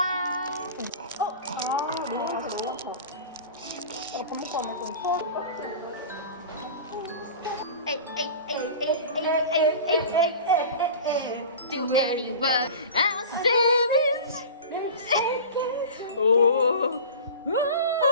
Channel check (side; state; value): both; inverted; correlation -0.35